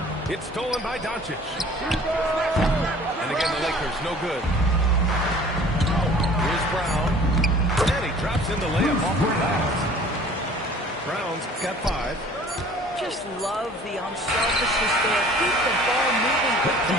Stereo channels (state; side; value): normal; both; correlation 0.49